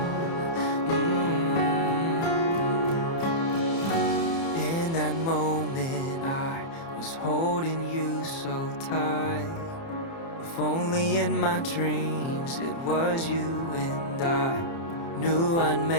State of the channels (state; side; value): late; right; 30 ms